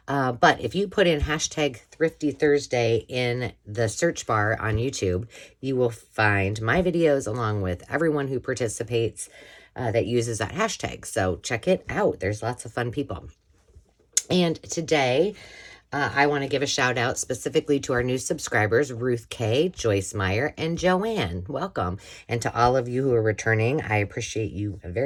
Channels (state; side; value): identical; both; correlation 1.00